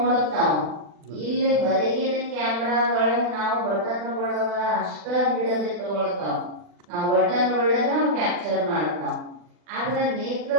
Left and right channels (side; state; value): left; late; 40 ms